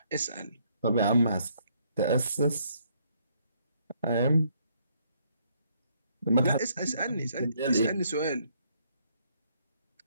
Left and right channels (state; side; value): inverted; both; correlation -0.69